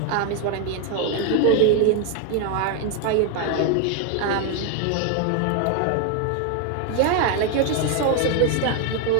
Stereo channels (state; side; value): different; both; correlation 0.01